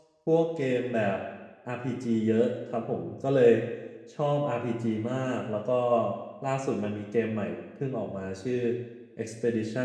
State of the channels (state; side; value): identical; both; correlation 1.00